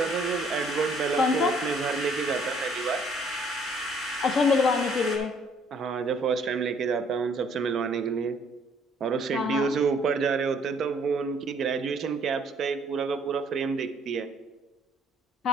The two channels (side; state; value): both; normal; correlation 0.62